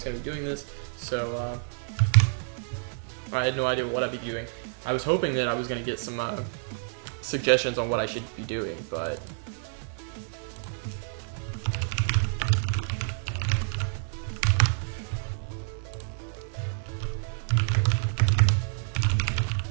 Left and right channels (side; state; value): left; silent; 59 dB below the other